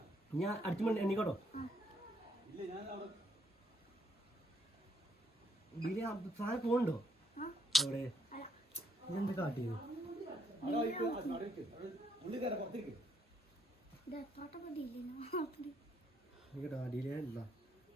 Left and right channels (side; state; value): both; normal; correlation 0.72